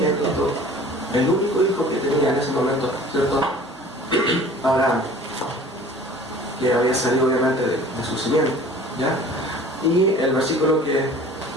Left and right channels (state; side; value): normal; both; correlation 0.46